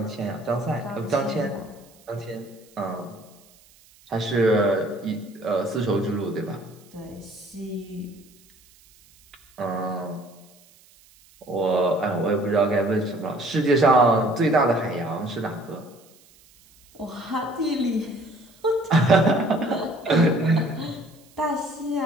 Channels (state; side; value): noise; right; hiss, 28 dB below the sound